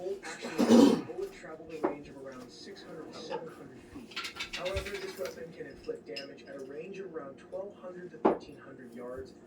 action, the bullet traveled a range of around 600 to 700 feet. However, this weapon can inflict damage at a range of around 1,200 to 1,300 yards.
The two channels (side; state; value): both; identical; correlation 1.00